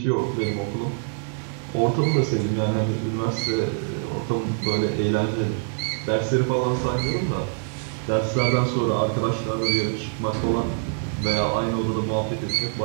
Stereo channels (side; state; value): left; silent; 62 dB below the other